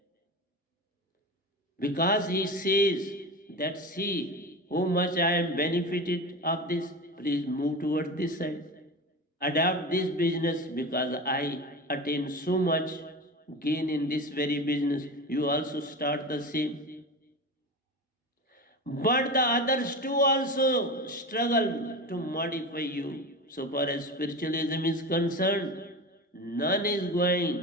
Because he says that, see how much I am benefited of this, please move towards this side. Adopt this business because I attain so much gain in this very business. You also start the same. But the others too also struggle to modify you. So far as spiritualism is concerned, none is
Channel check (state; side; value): normal; both; correlation 0.27